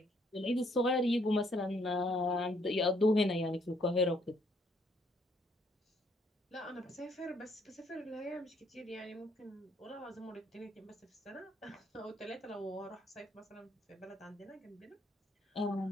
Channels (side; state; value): both; normal; correlation 0.68